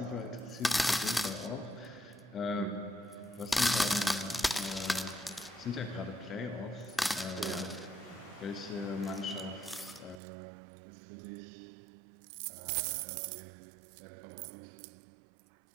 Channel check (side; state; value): left; drops out; at 10.2 s